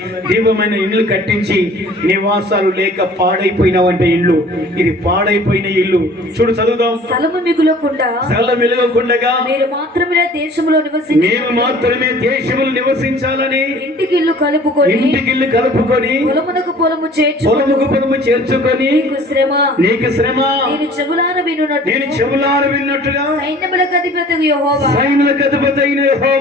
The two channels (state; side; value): normal; both; correlation 0.49